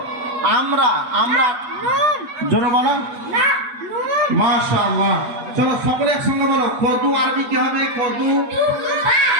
আমরা। আমরা জোরে বলো। মাশাআল্লাহ। চলো সকলে একসঙ্গে বলো, কদু আরবি কি হবে? কদু।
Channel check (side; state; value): left; late; 8.2 ms